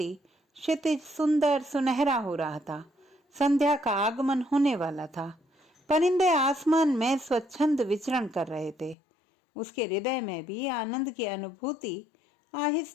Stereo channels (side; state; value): right; drops out; at 9.0 s